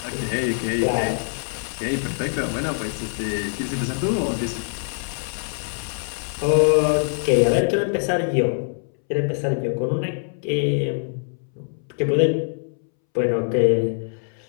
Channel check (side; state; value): right; silent; 63 dB below the other